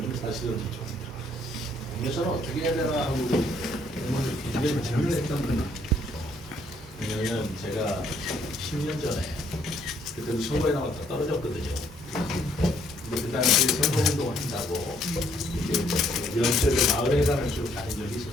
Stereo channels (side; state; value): both; normal; correlation 0.67